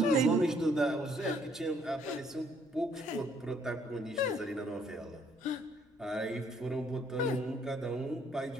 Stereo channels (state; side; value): normal; both; correlation 0.66